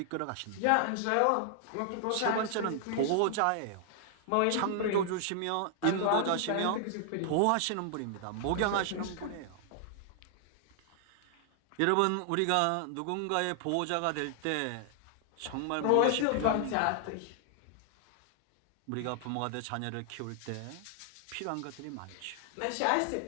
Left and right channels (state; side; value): different; both; correlation 0.00